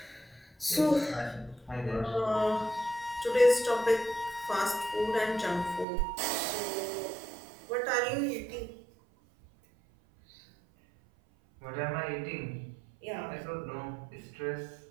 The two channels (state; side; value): drops out; left; at 5.9 s